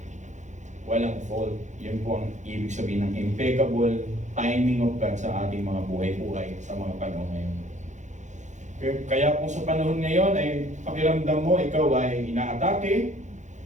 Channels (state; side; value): late; left; 0.35 ms